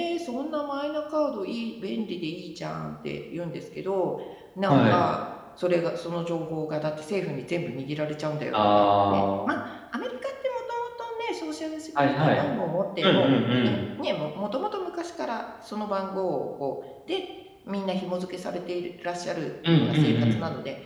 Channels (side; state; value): both; identical; correlation 1.00